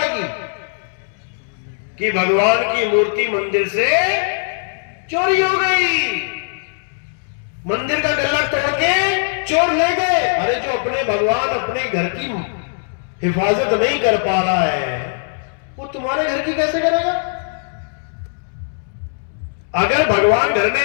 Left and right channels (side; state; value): right; silent; 66 dB below the other